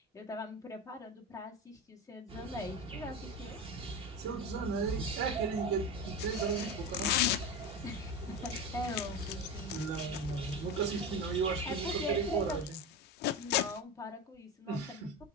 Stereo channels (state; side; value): normal; both; correlation 0.22